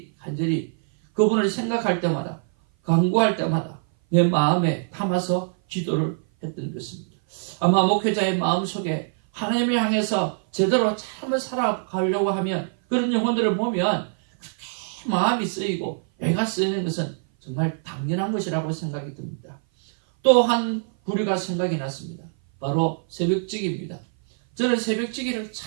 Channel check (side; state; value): left; silent; 57 dB below the other